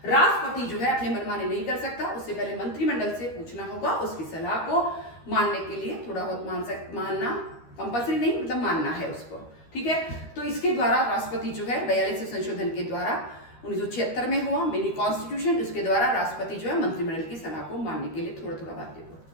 राष्ट्रपति जो है अपने मनमानी नहीं कर सकता, उससे पहले मंत्रिमंडल से पूछना होगा। उसकी सलाह को मानने के लिए थोड़ा बहुत मानना कंपल्सरी नहीं, मतलब मानना है उसको। ठीक है? तो इसके द्वारा राष्ट्रपति जो है 42वें संशोधन के द्वारा 1976 में हुआ मिनी कॉन्स्टिट्यूशन। उसके द्वारा राष्ट्रपति जो है मंत्रिमंडल की सलाह को मानने के लिए थोड़ा थोड़ा बाध्य हुआ।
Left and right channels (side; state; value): right; late; 13 ms